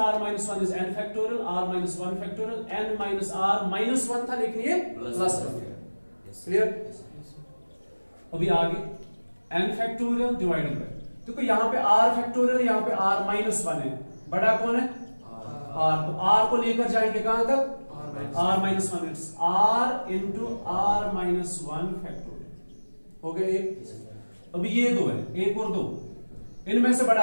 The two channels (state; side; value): inverted; both; correlation -1.00